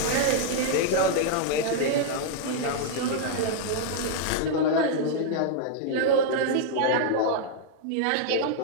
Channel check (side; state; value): both; different; correlation -0.01